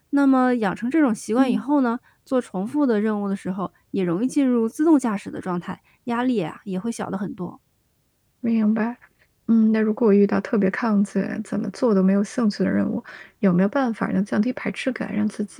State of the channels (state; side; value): identical; both; correlation 1.00